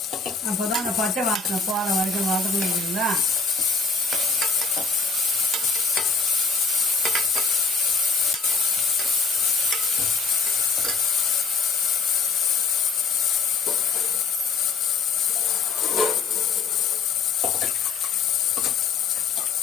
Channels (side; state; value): right; quieter; 4.6 dB